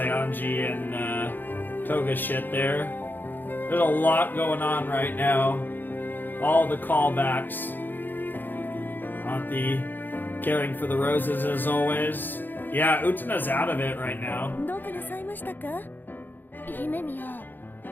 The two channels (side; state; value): right; late; 0.091 ms